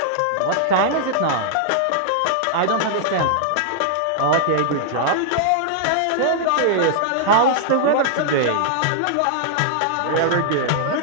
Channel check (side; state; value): both; different; correlation -0.01